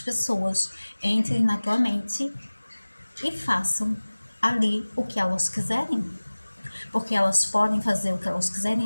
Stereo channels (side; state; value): both; inverted; correlation -1.00